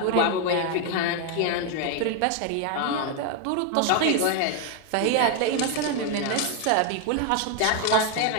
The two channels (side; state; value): both; different; correlation 0.01